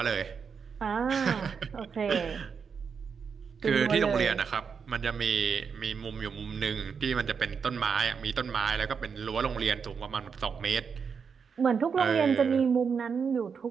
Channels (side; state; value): left; quieter; 6.1 dB